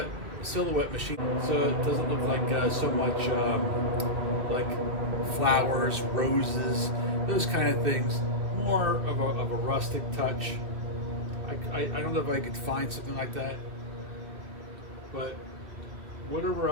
machine, so it doesn't look like so much like flowers, roses, those kind of things. More of a rustic touch. I don't know if I could find something like that, but whatever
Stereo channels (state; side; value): late; left; 2.6 ms